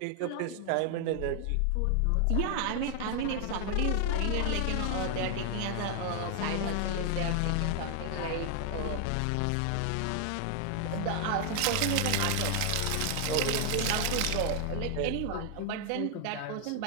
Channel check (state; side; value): different; both; correlation 0.00